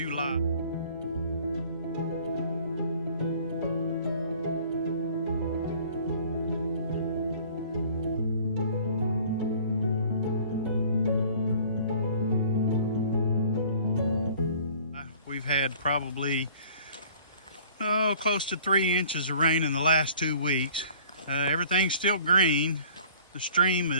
We've had probably close to 3 inches of rain in the last 2 weeks. Everything's still green. The stream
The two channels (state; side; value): inverted; both; correlation -0.51